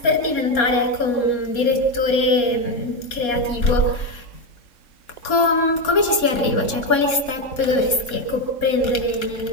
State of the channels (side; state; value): right; late; 3.6 ms